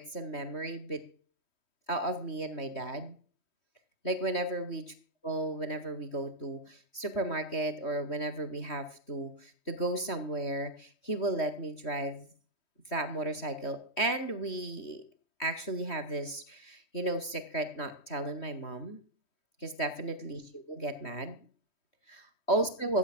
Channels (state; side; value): late; right; 3.1 ms